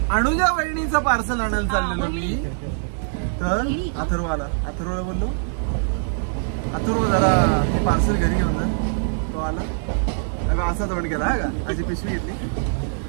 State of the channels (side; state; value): left; silent; digital silence